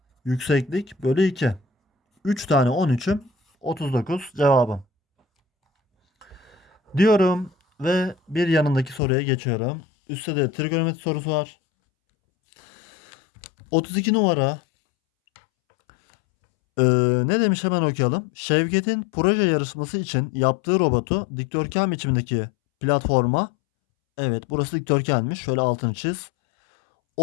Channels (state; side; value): drops out; right; at 9.0 s